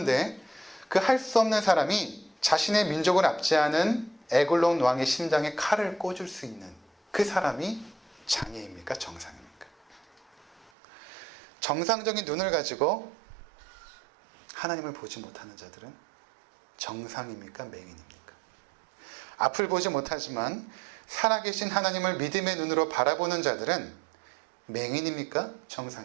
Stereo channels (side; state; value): left; drops out; at 10.7 s